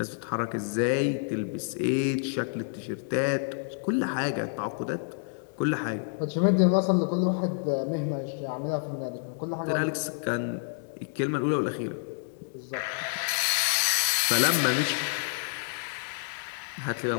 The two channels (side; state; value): right; silent; digital silence